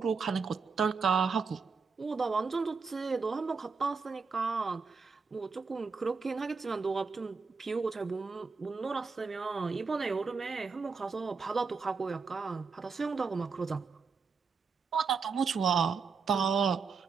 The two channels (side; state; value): left; quieter; 5.0 dB